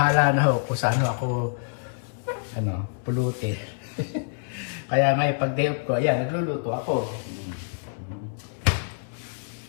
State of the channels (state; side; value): silent; right; 61 dB below the other